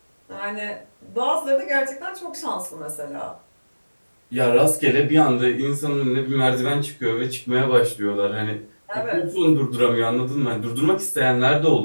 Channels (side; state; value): both; inverted; correlation -1.00